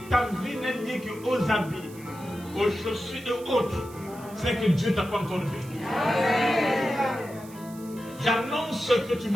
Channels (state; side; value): noise; right; hiss, 21 dB below the sound